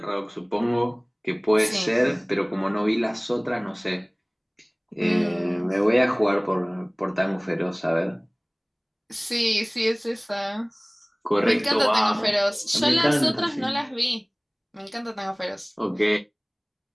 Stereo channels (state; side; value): identical; both; correlation 1.00